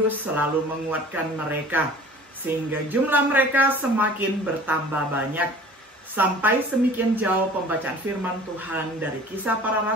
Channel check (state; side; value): normal; both; correlation 0.46